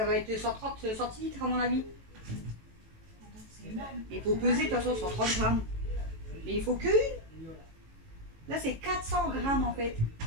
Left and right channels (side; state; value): left; late; 18 ms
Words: va être 130 centilitres à mon avis. C'est énorme. Il faut peser de toute façon 130 g. Mais il faut que une. Là, c'est 400 g en fait.